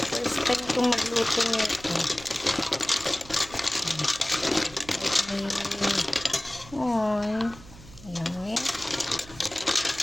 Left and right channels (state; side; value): noise; right; hum, 19 dB below the sound